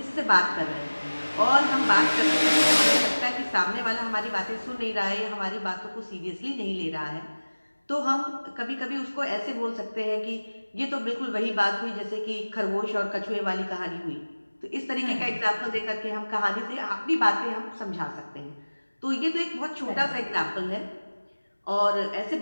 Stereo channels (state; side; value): inverted; both; correlation -1.00